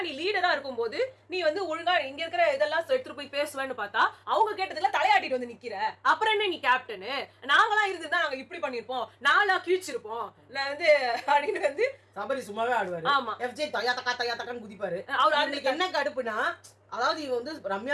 நீ லீடரா இருக்கும்போது நீ வந்து ஒழுங்கா இங்க இருக்கிற இதெல்லாம் எடுத்துட்டு போய் பேசுவேன்னு பார்த்தா அவங்க கேட்டதுல தலையாட்டிட்டு வந்து நிக்கிற. அப்புறம் என்ன நீ கேப்டனு? நாங்களாம் இருந்துதான் நாங்க இப்படி பண்ணிருப்போம், நாங்களா கிழிச்சிருப்போம் நான் வந்து அப்படின்னு வந்து சபரி சும்மாவே ஆடுவாரு. ஆமா, FJ தயா தக்கான்னு குதிப்பாரு. அவருக்கு என்ன கடுப்புனா, அதாவது இவ வந்து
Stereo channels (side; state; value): both; identical; correlation 1.00